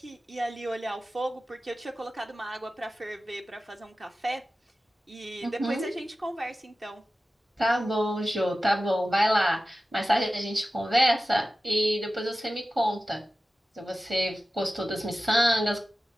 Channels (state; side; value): normal; both; correlation 0.95